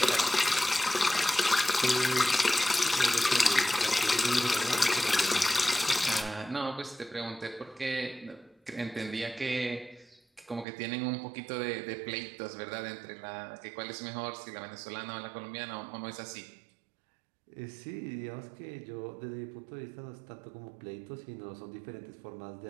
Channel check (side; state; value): left; drops out; at 10.7 s